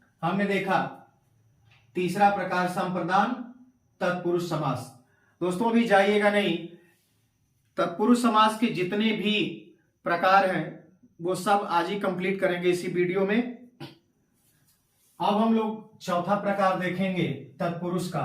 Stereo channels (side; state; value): both; identical; correlation 1.00